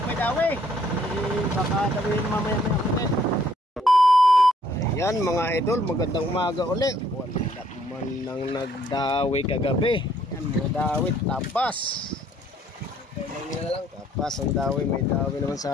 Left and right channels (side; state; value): both; normal; correlation 0.65